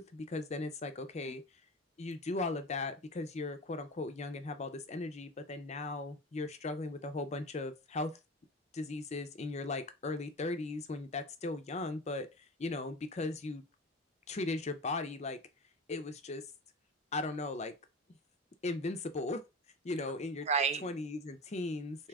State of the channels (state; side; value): normal; both; correlation 0.31